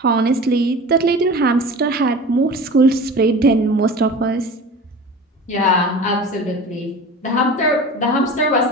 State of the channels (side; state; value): both; normal; correlation 0.36